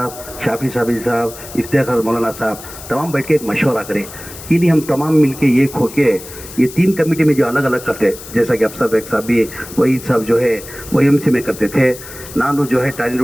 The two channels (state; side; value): noise; left; hiss, 15 dB below the sound